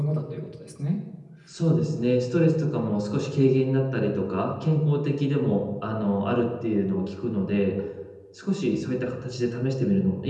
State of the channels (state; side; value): identical; both; correlation 1.00